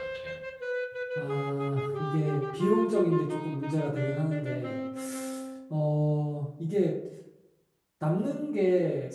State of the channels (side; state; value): both; identical; correlation 1.00